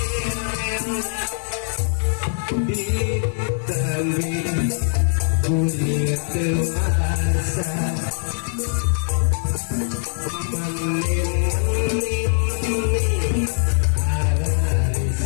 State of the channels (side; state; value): right; silent; digital silence